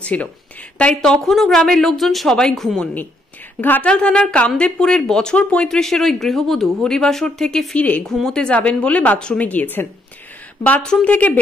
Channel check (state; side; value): normal; both; correlation 0.73